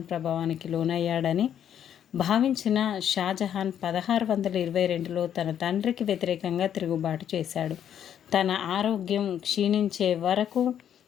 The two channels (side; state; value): right; quieter; 9.6 dB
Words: ప్రభావానికి లోనయ్యాడని భావించిన షాజహాన్ 1622లో తన తండ్రికి వ్యతిరేకంగా తిరుగుబాటు చేశాడు. తన ఆరోగ్యం క్షీణించే వరకు